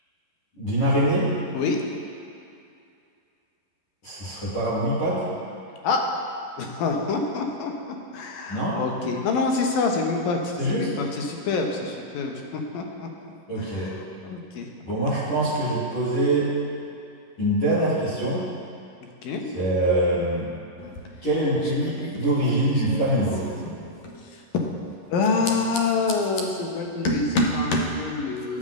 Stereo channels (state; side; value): late; right; 11 ms